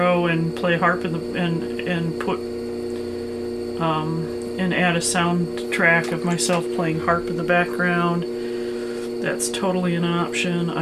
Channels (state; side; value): identical; both; correlation 1.00